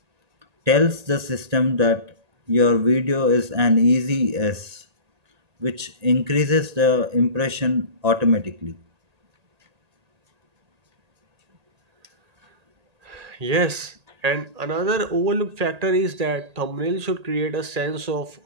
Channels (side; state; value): left; late; 1.8 ms